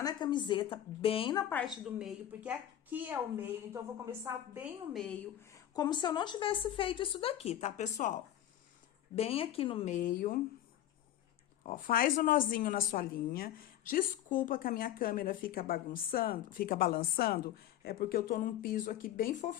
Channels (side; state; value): right; quieter; 11.8 dB